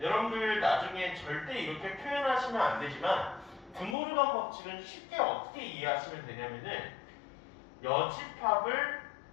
여러분들 나중에 절대 이렇게 표현하시면 안 되지만 드모르간 법칙은 쉽게 어떻게 이해하시면 되냐면은 여집합을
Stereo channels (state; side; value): drops out; right; at 4.0 s